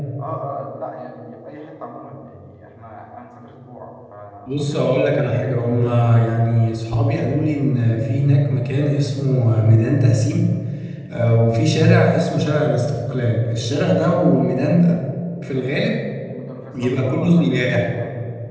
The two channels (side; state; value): both; identical; correlation 1.00